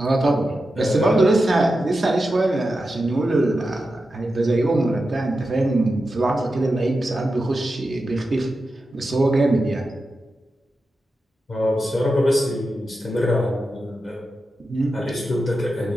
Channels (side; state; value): both; normal; correlation 0.90